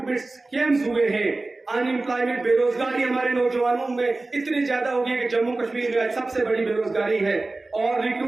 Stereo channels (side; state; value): left; quieter; 3.2 dB